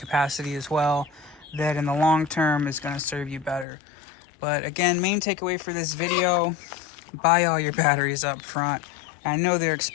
as well, that in the long term is going to serve you better. But again, main takeaway for this video, buy all your batteries up front. I know they're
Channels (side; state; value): right; drops out; at 3.7 s